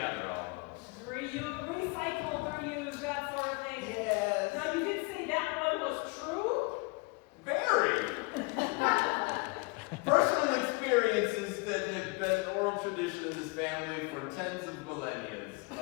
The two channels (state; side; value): quieter; right; 28.1 dB